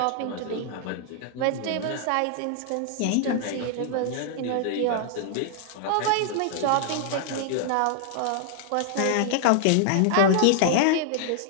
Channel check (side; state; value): both; different; correlation 0.00